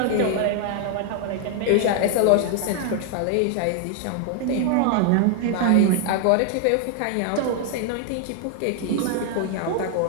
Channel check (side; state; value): both; different; correlation 0.00